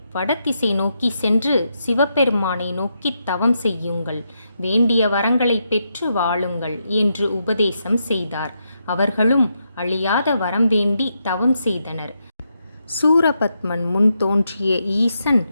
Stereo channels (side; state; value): both; inverted; correlation -0.82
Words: வடதிசை நோக்கி சென்று சிவபெருமானை நோக்கி தவம் செய்யுங்கள், வேண்டிய வரங்களை பெற்று வாழுங்கள் என்று உபதேசம் செய்தார். அவர்களும் அழியாத வரம் வேண்டி தவம் செய்தனர். சூரபத்மன் முன் தோன்றிய ஈசன்,